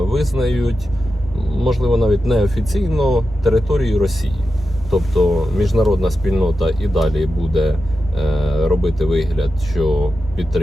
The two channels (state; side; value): normal; both; correlation 0.90